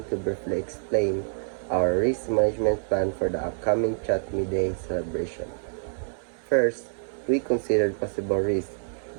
to briefly explain our risk management plan for the upcoming Chatme Day celebration. First, we considered possible risks.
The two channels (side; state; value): left; silent; 60 dB below the other